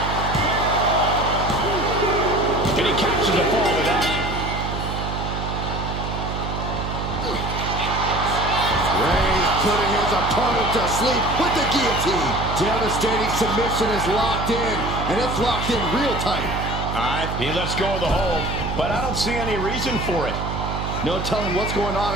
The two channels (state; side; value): noise; right; hum, 4 dB below the sound